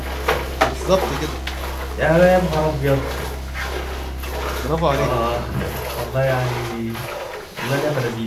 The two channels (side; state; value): both; identical; correlation 1.00